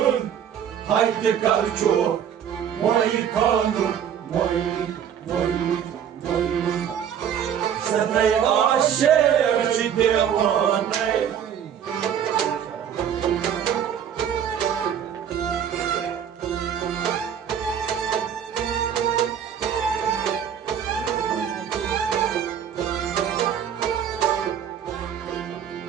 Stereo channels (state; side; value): quieter; left; 8.8 dB